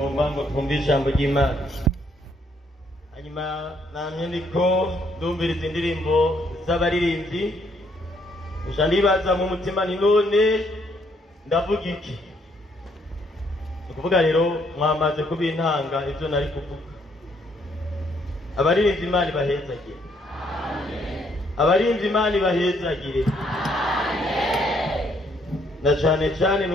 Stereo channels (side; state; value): both; normal; correlation 0.69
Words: ngo twumve ijambo ry'Imana. Hanyuma namye ndiko ndumviriza indirimbo z'abaririmbyi, nja ndibaza mu mutima ni none ndavuga iki? Ukuvuga rero mwamaze kubintanga ivyo nari kuvuga. Abaririmbyi Imana ibahezagire. Abaririmbyi Imana ibahezagire. Na cyane cyane